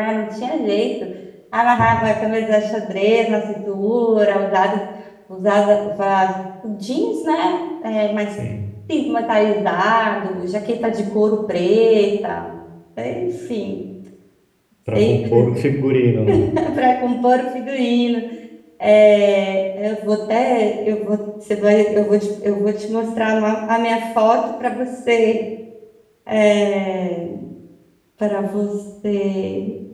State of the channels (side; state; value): both; identical; correlation 1.00